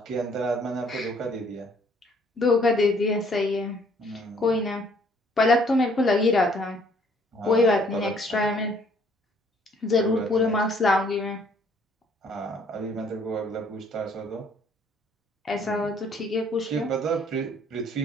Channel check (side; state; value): both; normal; correlation 0.62